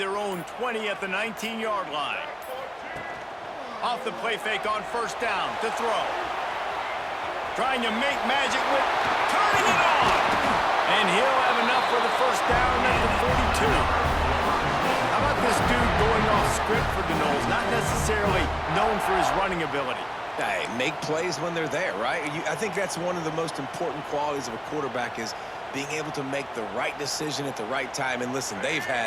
own 20 at the 19-yard line. Off the play fake on first down to throw. Trying to make magic with turning it on. And he'll have enough for the first down at the 42. How about this dude going off script for the Noles? Not necessarily known for his running ability. Hey, make plays when they're there, right? I think that's one of the most important qualities of a quarterback is being able to make the right decision at the right time. And listen, they've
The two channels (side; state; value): both; identical; correlation 1.00